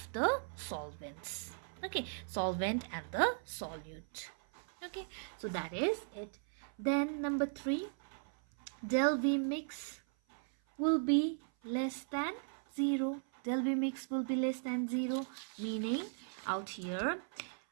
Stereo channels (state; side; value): silent; left; 53 dB below the other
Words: the solvents. Okay, solvent and the solute. Okay, so that is it. Then number 3, del V mix will be less than 0. Del V mix will be less than 0, meaning out here,